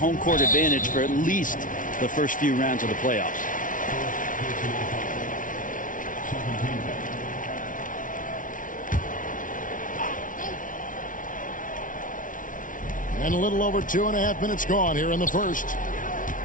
court advantage for at least the first few rounds of the playoffs. And a little over 2.5 minutes gone here in the first.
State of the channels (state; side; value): late; right; 0.38 ms